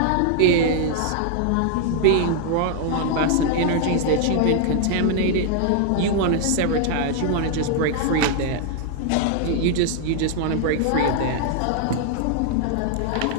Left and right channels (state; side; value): different; both; correlation 0.00